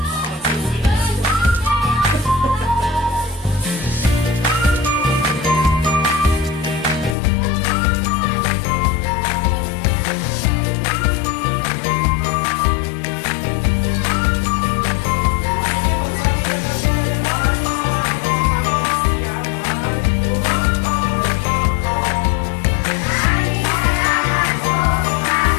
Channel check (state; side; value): drops out; right; at 7.2 s